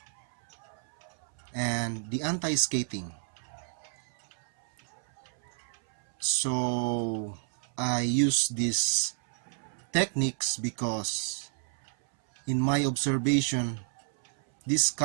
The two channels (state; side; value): silent; left; 58 dB below the other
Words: and the anti-skating. So I use these techniques because in my observation, this